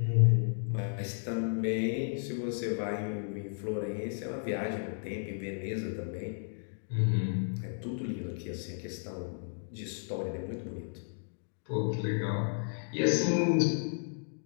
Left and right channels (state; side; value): silent; right; digital silence